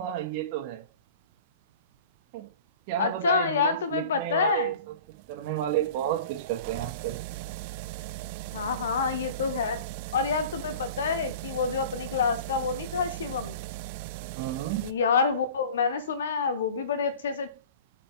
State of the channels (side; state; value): both; inverted; correlation -0.40